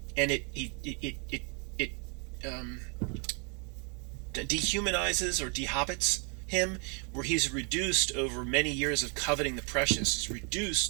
and it dehumanizes or dehobbits him, where he's reduced over many years of coveting the precious. He's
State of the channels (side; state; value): left; quieter; 36.6 dB